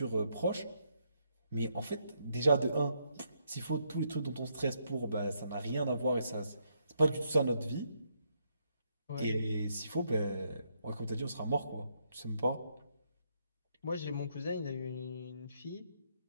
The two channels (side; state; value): both; inverted; correlation -0.76